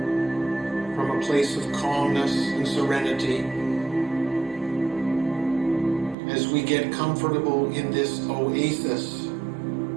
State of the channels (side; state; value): left; drops out; at 6.2 s